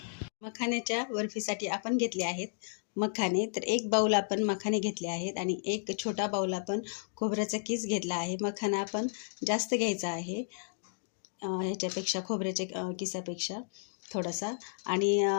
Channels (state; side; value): silent; right; digital silence